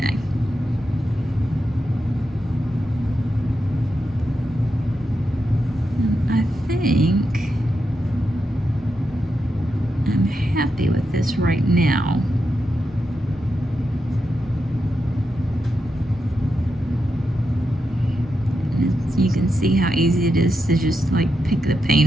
And I think I'm happy with this right now. You can see how easy it is to just like pick the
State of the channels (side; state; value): both; normal; correlation 0.86